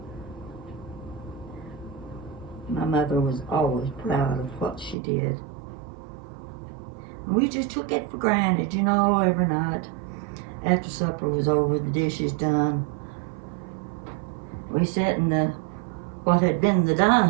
My mother was always proud of what she did. And we just took it for granted, you know, every night. After supper was over, the dishes done, we sat in what had been the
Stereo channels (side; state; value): left; drops out; at 5.0 s